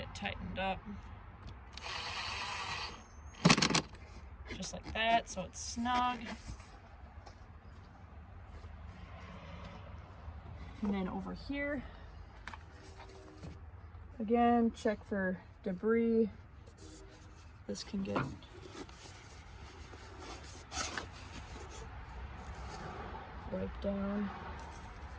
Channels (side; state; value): both; identical; correlation 1.00